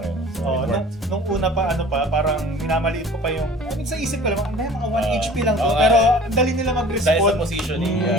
So, Oh, it worked. nung una pa, parang minamaliit ko pa yung, I mean, sa isip ko lang, mga 1 HP lang to, oo nga. pero ang dali nila Dahil sa mag-respond. positioning.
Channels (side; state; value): both; normal; correlation 0.45